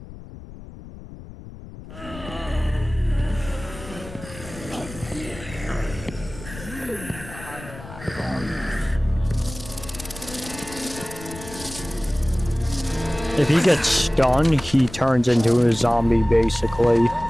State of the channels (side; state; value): left; noise; rumble, 15 dB below the sound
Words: If he gets stunned, he turns into a zombie, basically.